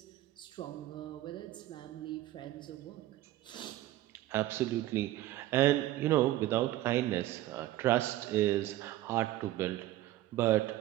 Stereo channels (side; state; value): left; quieter; 15.2 dB